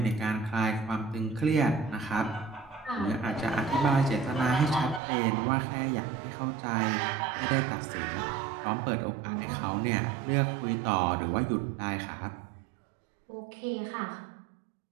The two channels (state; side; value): drops out; left; at 5.0 s